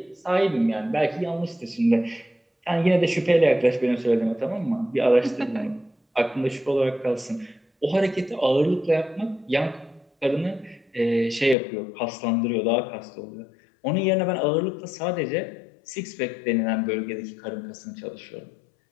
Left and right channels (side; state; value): right; drops out; at 11.6 s